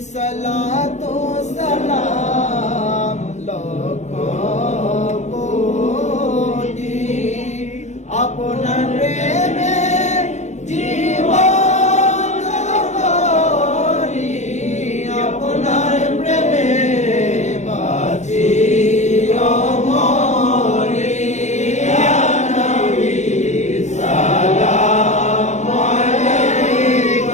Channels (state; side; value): late; right; 0.34 ms